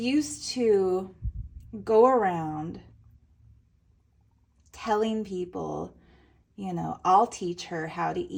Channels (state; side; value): identical; both; correlation 1.00